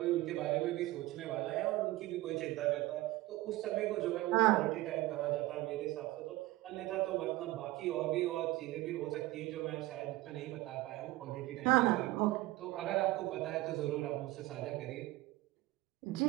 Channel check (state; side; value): quieter; left; 18.2 dB